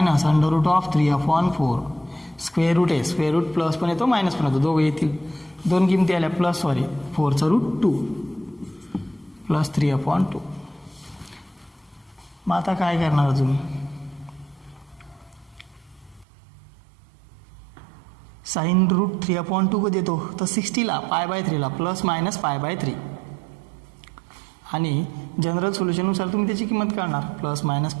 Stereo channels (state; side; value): drops out; left; at 16.2 s